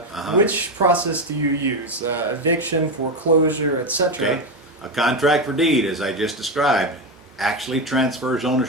which process do you use? Eviction, foreclosure, etc.? Okay. A contract for deed, as I just described, actually transfers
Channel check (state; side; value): normal; both; correlation 0.12